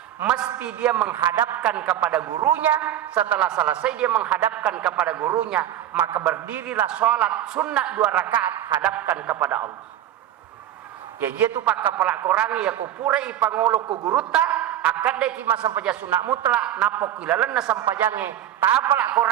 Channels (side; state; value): left; quieter; 11.5 dB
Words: mesti dia menghadapkan kepada gurunya. Setelah selesai dia menghadapkan kepada gurunya, maka berdirilah sholat sunnah 2 rakaat hadapkan kepada Allah. Ya dia tu pak kepala korangi ya ku pura ipangolo ku guruta akad deki masa paja sunnah mutlak napok ilalan na sampajange tapala